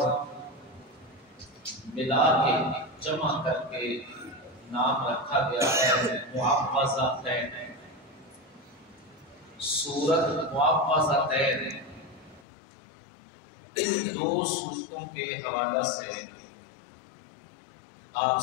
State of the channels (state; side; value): drops out; right; at 12.4 s